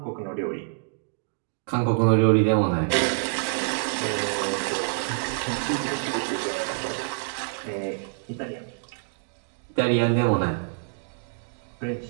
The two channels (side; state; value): left; silent; digital silence